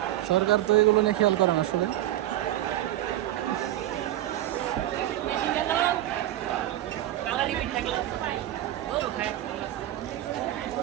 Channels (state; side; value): quieter; left; 13.7 dB